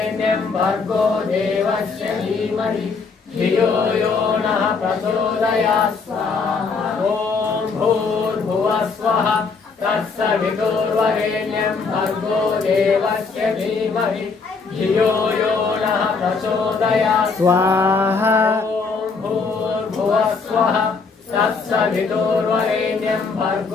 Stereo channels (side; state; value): right; quieter; 4.7 dB